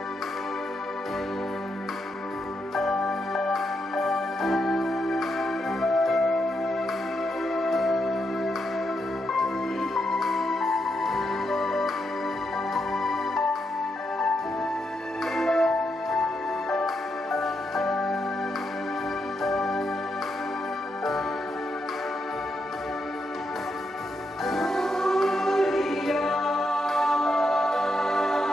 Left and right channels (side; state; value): both; normal; correlation 0.82